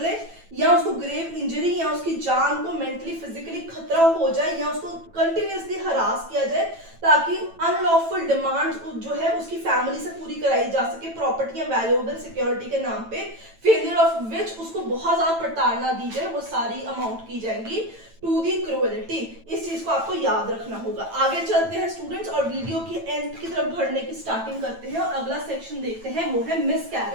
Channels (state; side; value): late; left; 9.0 ms